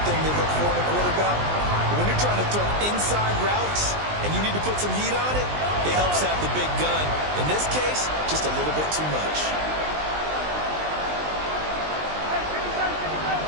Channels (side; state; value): left; late; 20 ms